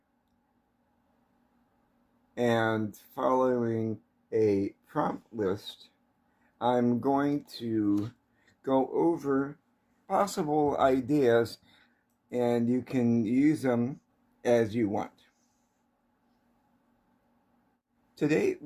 and following a prompt list, I'm going to go over possible ideas and you can use them as you want. Today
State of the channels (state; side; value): identical; both; correlation 1.00